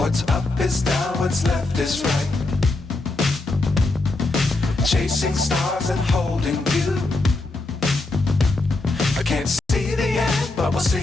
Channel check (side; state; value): right; quieter; 3.1 dB